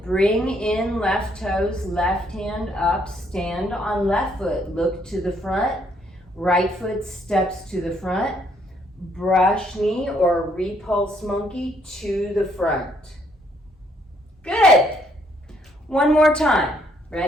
Bring in left toes, left hand up. Stand on left foot, look to the front. Right foot steps to the front. Brush knee or repulse monkey to the front. Good. One more time.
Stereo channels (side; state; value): both; normal; correlation 0.69